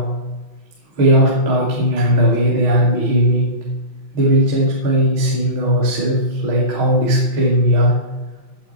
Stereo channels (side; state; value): left; late; 5.7 ms